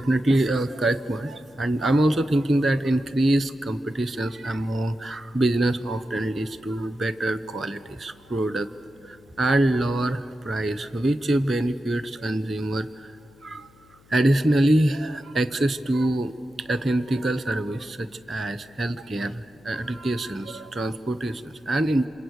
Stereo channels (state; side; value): noise; left; hum, 28 dB below the sound